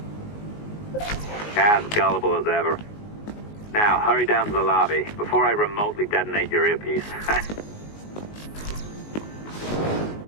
As gullible as ever. Now, hurry down to the lobby before I remotely detonate your earpiece.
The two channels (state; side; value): late; right; 19 ms